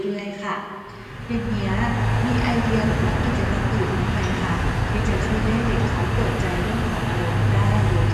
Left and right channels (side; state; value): both; identical; correlation 1.00